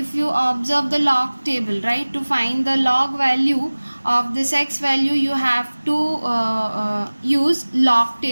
you observe the log table, right, to find the log value of this x value you have to use log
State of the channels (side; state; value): both; inverted; correlation -1.00